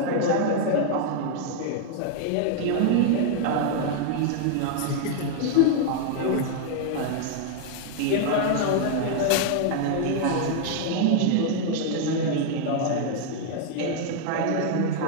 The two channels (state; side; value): different; both; correlation 0.00